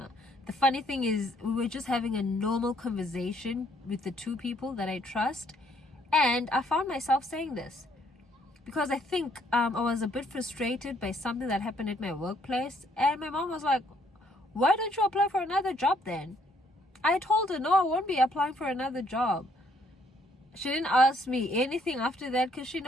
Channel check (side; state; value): both; normal; correlation 0.67